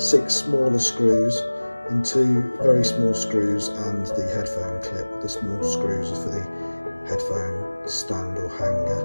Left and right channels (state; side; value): inverted; both; correlation -1.00